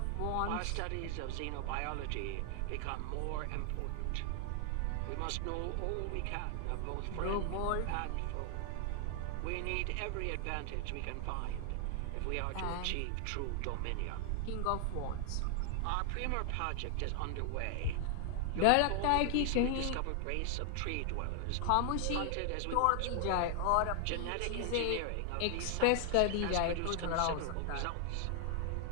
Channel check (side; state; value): both; different; correlation 0.00